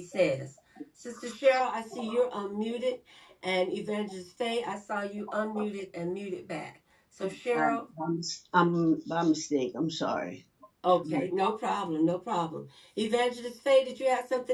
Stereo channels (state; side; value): identical; both; correlation 1.00